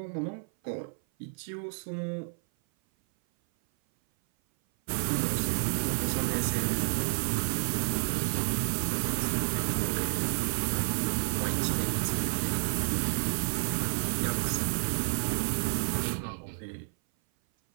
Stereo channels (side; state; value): left; silent; 56 dB below the other